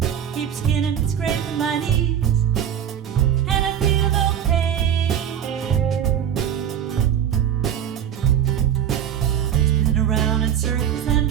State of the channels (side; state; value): left; quieter; 9.6 dB